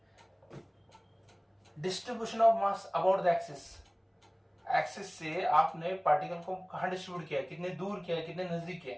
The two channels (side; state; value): both; identical; correlation 1.00